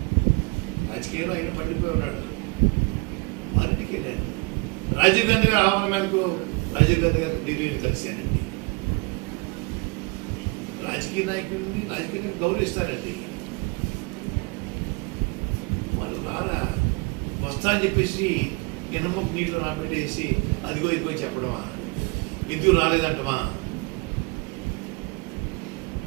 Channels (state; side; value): quieter; left; 29.2 dB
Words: రాజకీయంలో ఆయన పడిపోయి ఉన్నాడు, వారింటికి వెళ్ళాను. రాజీవ్ గాంధీ గారి ఆహ్వానం మేరకు రాజీవ్ గాంధీ గారు ఢిల్లీని కలిశానండి. రాజకీయ నాయకుడిని రాజకీయాన్ని గౌరవిస్తారండి. వాళ్ళు రారా, వస్తా అని చెప్పేసి ఎనమ్మకు నీటిలో నాపెట్టేసి అదిగో ఇదిగో చెప్పడమా, ఎందుకు రాలేదంటమా,